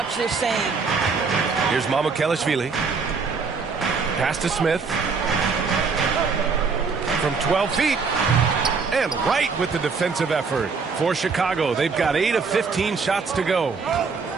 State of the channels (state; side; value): quieter; left; 5.0 dB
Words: the same. Here's Mamukelashvili. Pass to Smith. From 12 feet. And right with the defensive effort. For Chicago, they've got 8 of 15 shots to go.